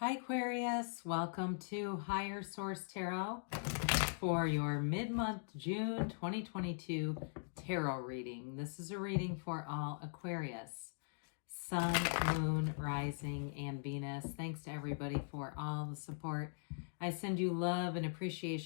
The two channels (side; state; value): right; silent; digital silence